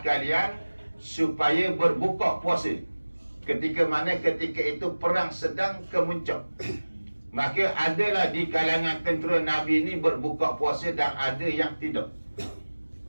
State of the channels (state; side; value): inverted; both; correlation -1.00